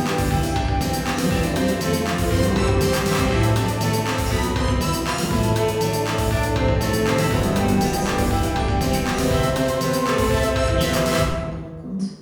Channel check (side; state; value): both; identical; correlation 1.00